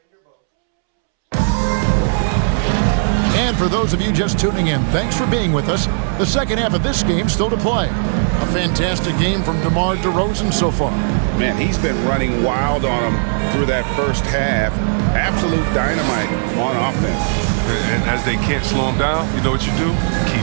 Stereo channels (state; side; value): silent; left; 68 dB below the other